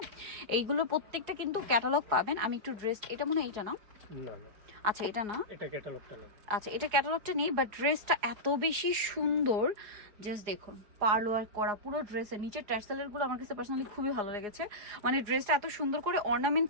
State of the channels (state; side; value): late; left; 4.8 ms